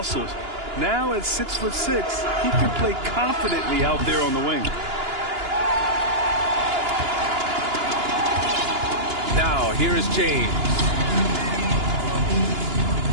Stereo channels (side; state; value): left; late; 2.9 ms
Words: Now at 6'6", he can play confidently out there on the wing. Now, here is James.